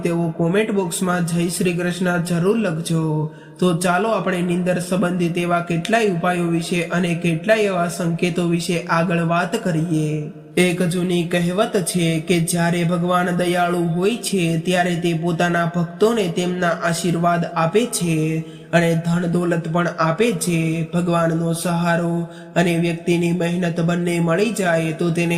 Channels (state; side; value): identical; both; correlation 1.00